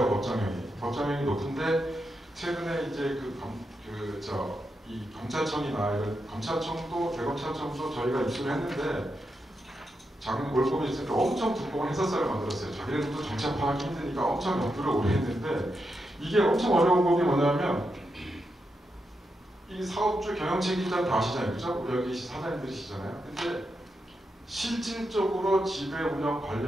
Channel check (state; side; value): normal; both; correlation 0.85